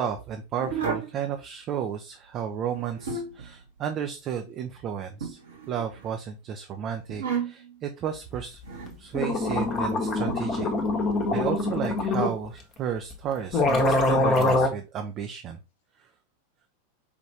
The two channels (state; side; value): normal; both; correlation 0.45